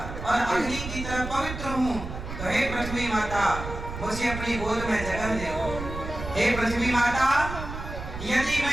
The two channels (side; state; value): right; noise; rumble, 8 dB below the sound